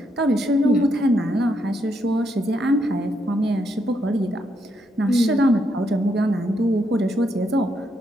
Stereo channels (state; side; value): normal; both; correlation 0.77